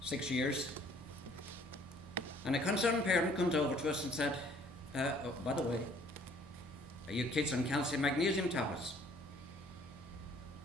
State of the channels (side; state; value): both; normal; correlation 0.58